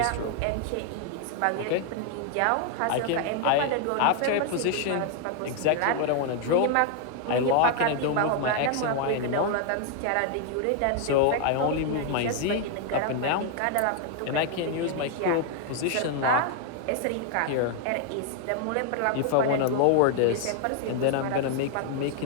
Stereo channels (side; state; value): both; different; correlation 0.00